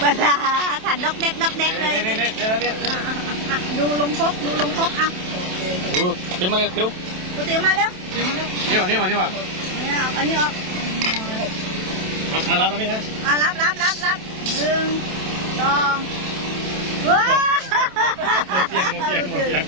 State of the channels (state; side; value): late; left; 27 ms